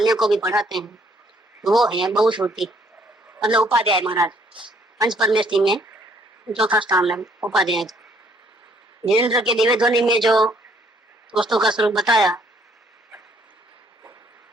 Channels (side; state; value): both; normal; correlation 0.64